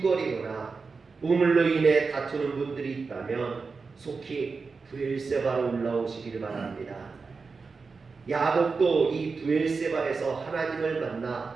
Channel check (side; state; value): left; quieter; 4.6 dB